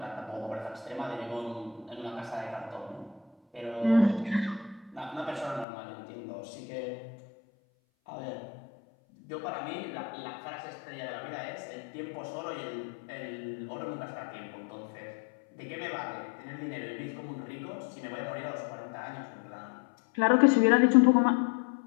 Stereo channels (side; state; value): right; drops out; at 5.7 s